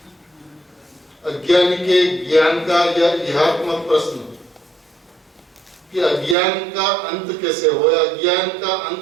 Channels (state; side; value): drops out; left; at 6.4 s